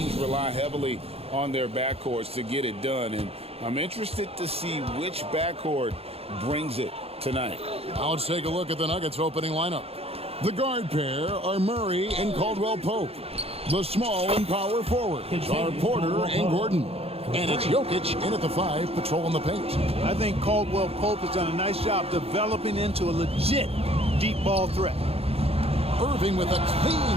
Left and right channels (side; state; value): left; late; 0.29 ms